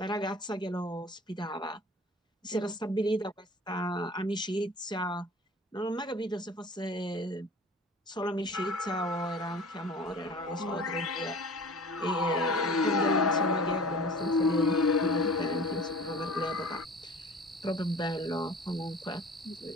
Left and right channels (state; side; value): normal; both; correlation 0.43